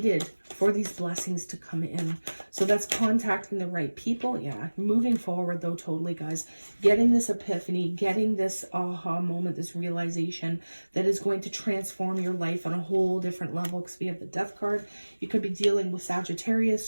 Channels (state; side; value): inverted; both; correlation -1.00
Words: for these blessings to come in. So that's contacting the right people. Yeah, moving forward though, totally, guys. Getting this epiphany, getting this aha moment, this realization that is going to transform your life on a whole different level, because we have the Death card. You could be dealing with Sagittarius,